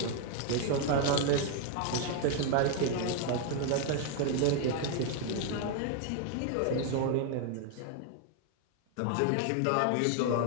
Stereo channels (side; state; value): both; different; correlation 0.00